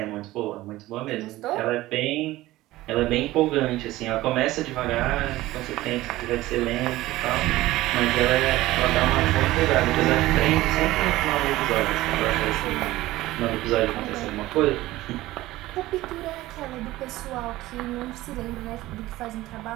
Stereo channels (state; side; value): quieter; left; 17.2 dB